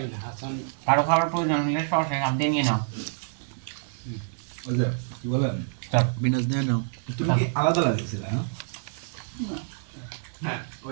না, হাসান কারো খাবার প্রয়োজন হলে সরাসরি হাত দিয়ে নিয়ে নাও। ওই যে কি বলেন, বিনাশ নিয়ে নাও। তুমি কি আলাদা লাগিয়েছিলে? হ্যাঁ ও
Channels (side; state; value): left; silent; digital silence